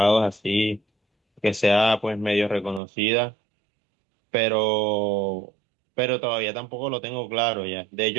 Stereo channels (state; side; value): drops out; left; at 2.8 s